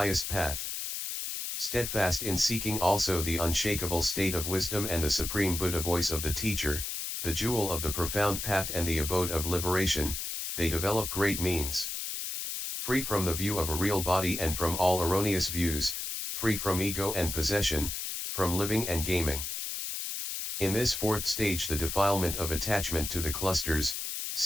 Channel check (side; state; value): left; noise; hiss, 4 dB below the sound